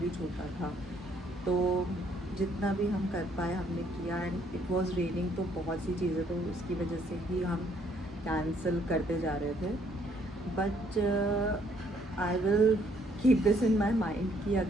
छोटा था, तो जितना भी हम कर पाए हमने किया एंड इट वाज रेनिंग, तो बहुत सी चीज़ें तो उसकी वजह से ही हम कैंसिल करते जा रहे थे। But I will keep this in my mind कि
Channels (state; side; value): normal; both; correlation 0.66